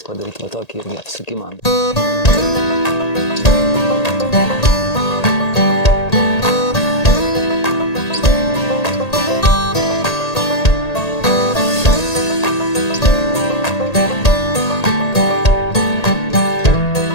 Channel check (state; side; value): late; right; 1.8 ms